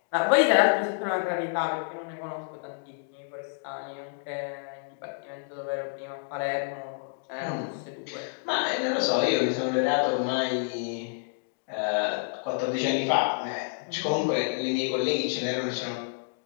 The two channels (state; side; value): silent; right; digital silence